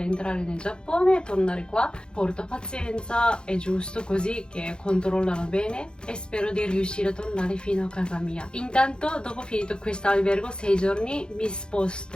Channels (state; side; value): late; right; 0.049 ms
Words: entrare nel Giappone e tornare qua. Porto pazienza, è giusto così, che controllano bene, e spero di riuscire a tornare fino a casa mia. Intanto, dopo finito questo albergo 6 giorni, mi